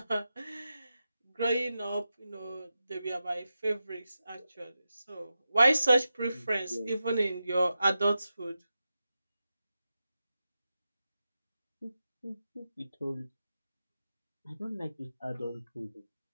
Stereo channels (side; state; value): both; inverted; correlation -0.91